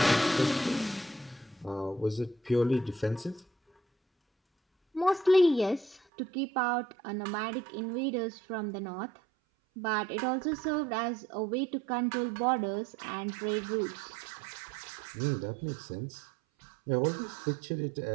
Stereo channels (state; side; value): drops out; left; at 6.0 s